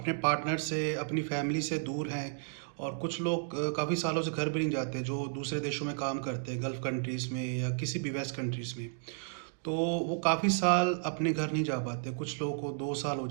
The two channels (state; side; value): silent; left; digital silence